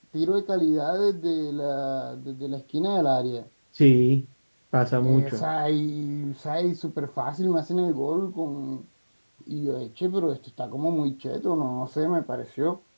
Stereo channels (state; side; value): inverted; both; correlation -1.00